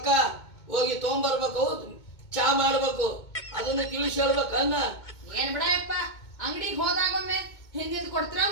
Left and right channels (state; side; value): late; right; 2.2 ms